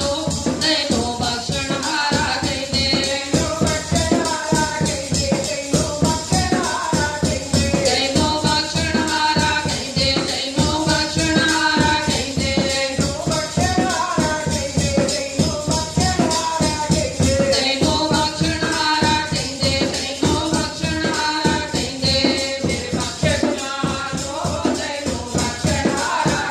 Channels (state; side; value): identical; both; correlation 1.00